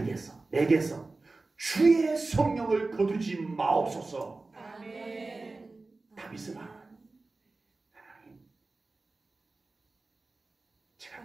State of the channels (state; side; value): quieter; left; 3.5 dB